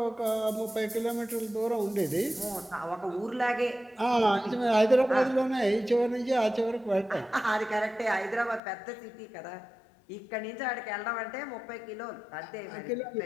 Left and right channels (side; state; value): right; drops out; at 8.6 s